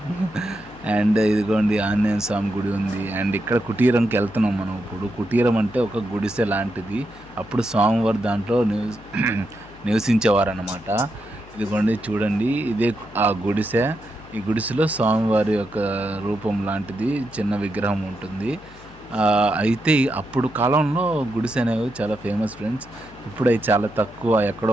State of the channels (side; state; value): left; noise; hum, 22 dB below the sound